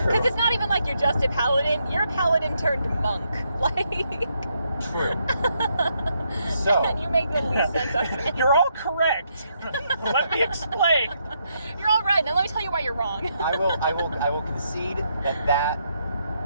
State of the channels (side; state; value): both; inverted; correlation -0.77